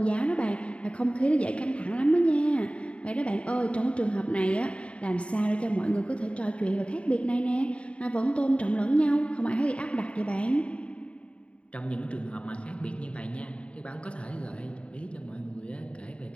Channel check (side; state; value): right; late; 0.060 ms